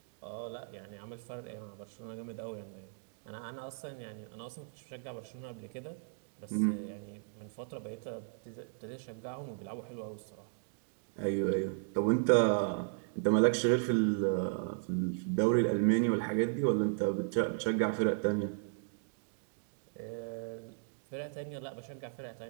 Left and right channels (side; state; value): left; silent; digital silence